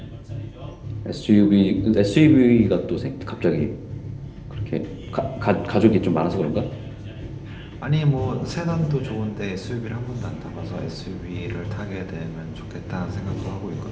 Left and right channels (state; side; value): identical; both; correlation 1.00